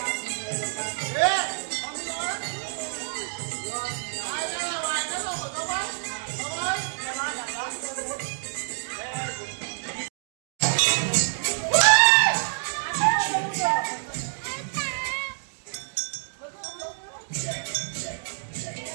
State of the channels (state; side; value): silent; left; digital silence